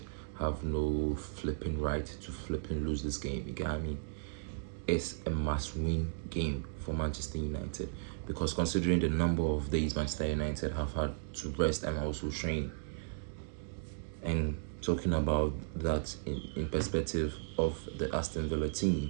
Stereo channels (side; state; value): left; silent; digital silence